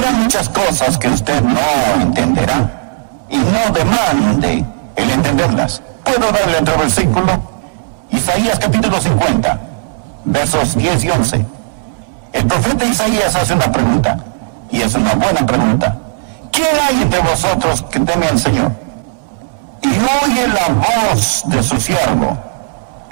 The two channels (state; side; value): silent; left; digital silence